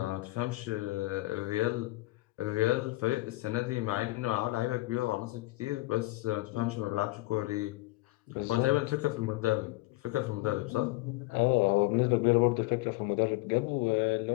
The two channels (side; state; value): right; quieter; 20.4 dB